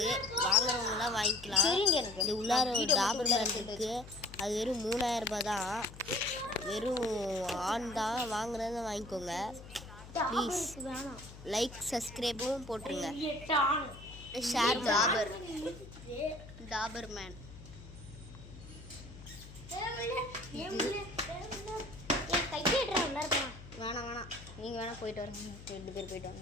வாங்குறவங்களாம் வாங்கிக்கலாம். இந்த உள்ளார ஒரு டாபர்மேன் இருக்குது. அது வெறும் 3000 ரூபாய் தான். வெறும் ஆண் தான். வாங்குறத வாங்கிக்கோங்க ப்ளீஸ். லைக் சப்ஸ்கிரைபும் போட்டுருங்க. Share Dobermann. வேணாம் வேணாம், நீங்கள் வேணால் போயிட்டு வரீங்க. 2 பேர் போயிட்டு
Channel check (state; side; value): noise; left; hum, 16 dB below the sound